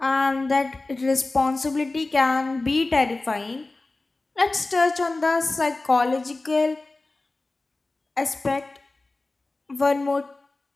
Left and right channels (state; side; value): quieter; right; 3.2 dB